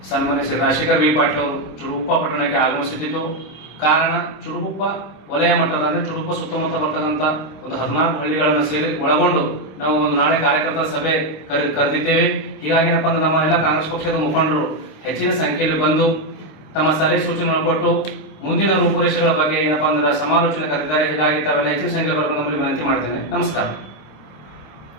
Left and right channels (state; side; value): late; right; 26 ms